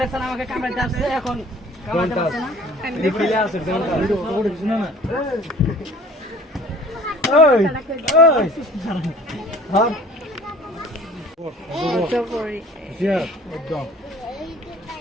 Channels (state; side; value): normal; both; correlation 0.49